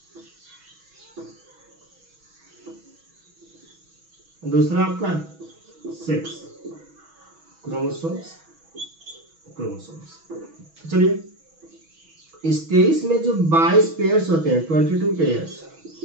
दूसरा आपका सेक्स क्रोमोसोम्स। चलिए इस 23 में जो 22 पेयर्स होते हैं 22 पेयर्स,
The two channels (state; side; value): late; left; 6.2 ms